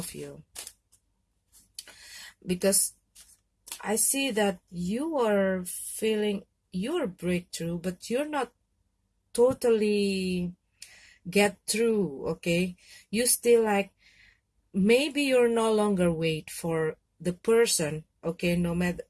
you, because I see that you are feeling your breakthrough, but you're not totally get through, okay. You still like, maybe you're no longer wait for the person, okay, no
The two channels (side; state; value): both; identical; correlation 1.00